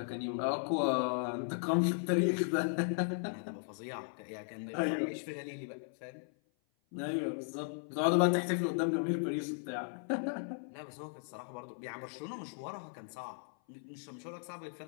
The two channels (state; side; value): silent; right; 53 dB below the other